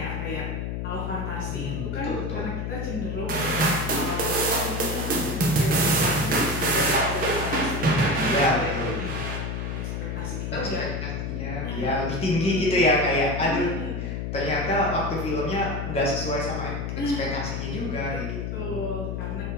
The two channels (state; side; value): noise; left; hum, 3 dB below the sound